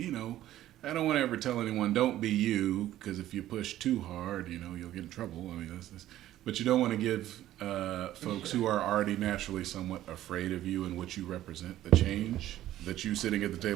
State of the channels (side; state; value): left; quieter; 13.5 dB